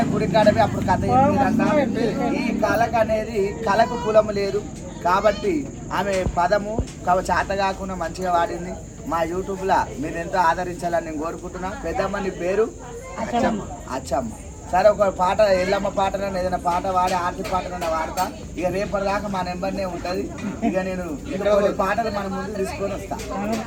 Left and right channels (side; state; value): both; identical; correlation 1.00